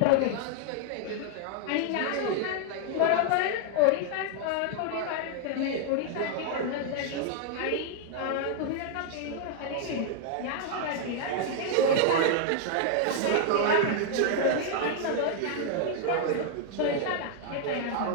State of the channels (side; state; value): both; different; correlation 0.00